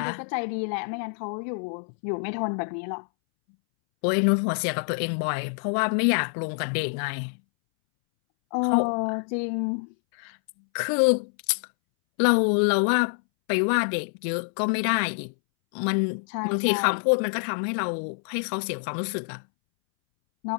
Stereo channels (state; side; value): silent; right; 61 dB below the other